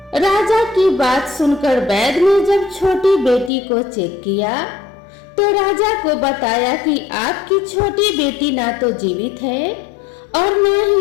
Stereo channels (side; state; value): right; drops out; at 3.5 s